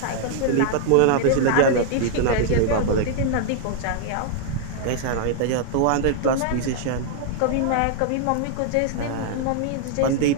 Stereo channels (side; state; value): both; different; correlation 0.00